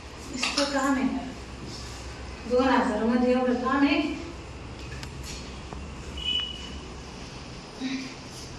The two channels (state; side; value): identical; both; correlation 1.00